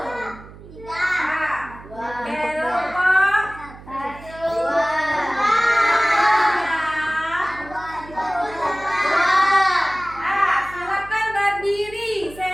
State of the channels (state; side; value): noise; right; hum, 18 dB below the sound